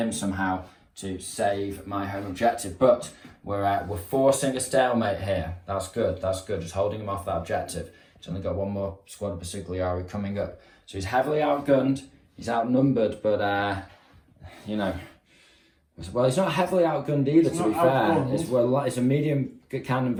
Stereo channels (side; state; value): both; identical; correlation 1.00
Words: somehow to save my home objective, but we're forcing a stalemate here. That's good, just holding him off that objective. He's only got 1 more squad of Consigliere coming up, so he's heavily outgunned, he's outnumbered, but you know, well, he's not heavily outgunned either, to be fair. It's a medium cannon